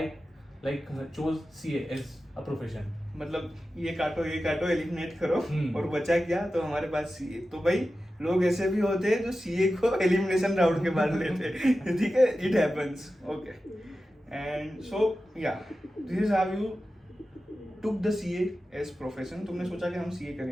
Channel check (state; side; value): normal; both; correlation 0.93